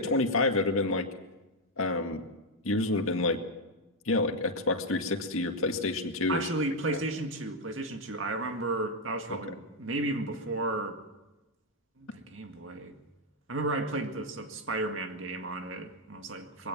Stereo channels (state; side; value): normal; both; correlation 0.02